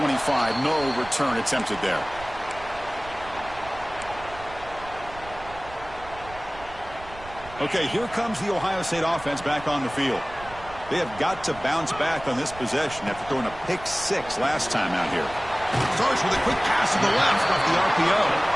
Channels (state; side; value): noise; right; rumble, 17 dB below the sound